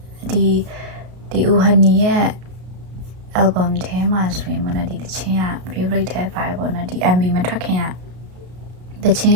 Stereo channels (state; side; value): late; left; 33 ms